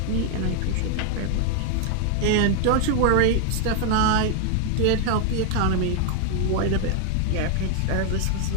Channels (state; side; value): different; both; correlation 0.00